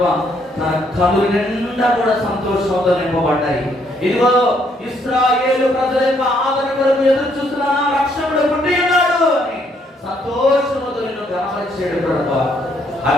తన కళ్ళు నిండా కూడా సంతోషంతో నింపబడ్డాయి. ఇదిగో ఇశ్రాయేలు ప్రజల యొక్క ఆదరణ కొరకు ఎదురు చూస్తున్నా రక్షకుడు పుట్టి ఉన్నాడు అని సంతోషంతో నిన్ను గమనించాడు ప్రభా.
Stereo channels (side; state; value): both; normal; correlation 0.70